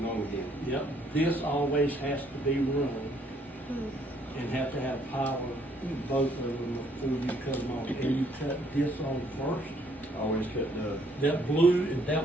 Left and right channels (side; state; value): both; normal; correlation 0.66